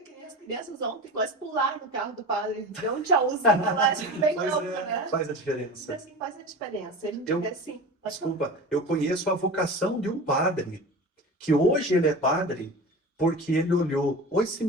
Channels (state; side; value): normal; both; correlation 0.32